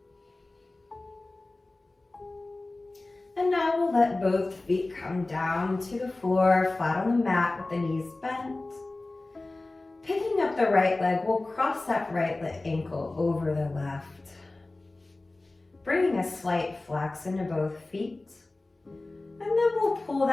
And now we'll let both feet come down to the floor, flat on the mat with the knees bent. Picking up the right leg, we'll cross that right leg ankle over the left. Bringing a slight flex into both feet. And then we'll pull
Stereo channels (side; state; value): right; quieter; 3.0 dB